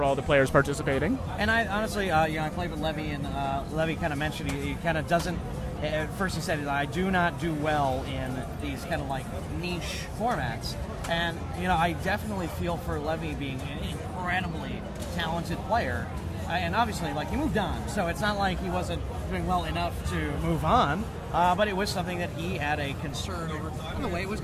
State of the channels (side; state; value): both; identical; correlation 1.00